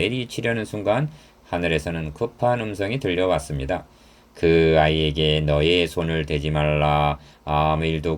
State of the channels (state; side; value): identical; both; correlation 1.00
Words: 순간 하늘에서는 급한 음성이 들려왔습니다. 그 아이에게 너의 손을 대지 말라. 아무